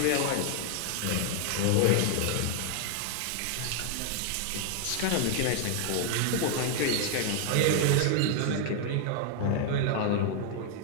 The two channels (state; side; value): different; both; correlation 0.00